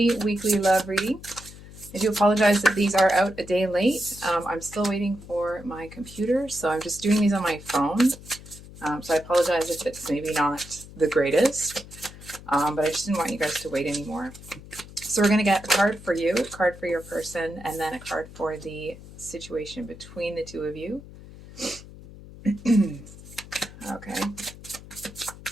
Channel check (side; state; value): left; noise; hum, 17 dB below the sound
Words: weekly love reading. I do apologize that these are out a day late. I'm still waiting for my computer, so I'm just doing these on my phone. So I apologize if it's maybe not the greatest, but I just didn't want you guys to wait anymore. So we're going to get a card for you, a card for your person, and then a card for the situation between the two of you. Okay.